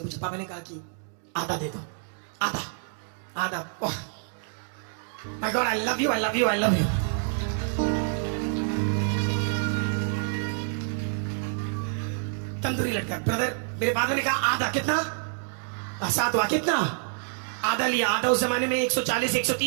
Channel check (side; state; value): left; silent; 60 dB below the other